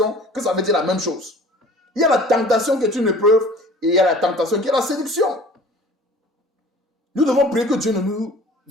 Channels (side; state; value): both; normal; correlation 0.47